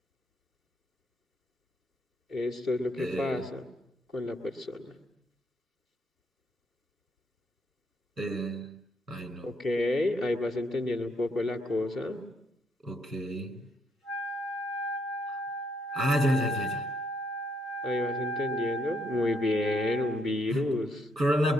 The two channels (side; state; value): both; normal; correlation 0.73